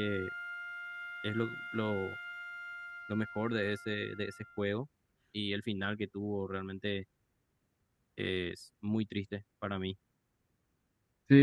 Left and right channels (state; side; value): identical; both; correlation 1.00